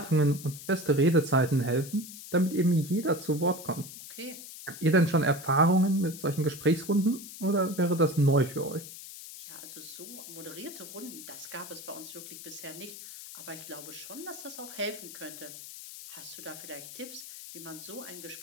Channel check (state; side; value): noise; left; hiss, 13 dB below the sound